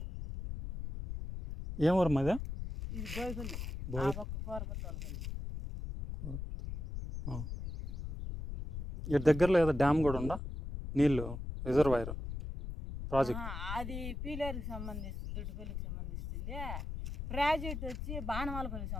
ఏం ఊరు మాది? ఇది బోయపల్లి, కోరపల్లి. ఇటు దగ్గరలో ఏదో డ్యామ్ కూడా ఉందా, నీళ్ళు రిజర్వాయర్ ప్రాజెక్ట్? అది పీలేరుకి సంబంధిస్తుంది, దుడ్డుపల్లికి సంబంధిస్తుంది. ప్రాజెక్ట్ వచ్చి బాణమాలపల్లికి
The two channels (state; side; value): noise; left; rumble, 6 dB below the sound